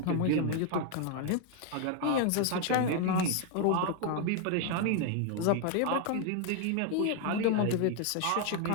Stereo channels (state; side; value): different; both; correlation 0.01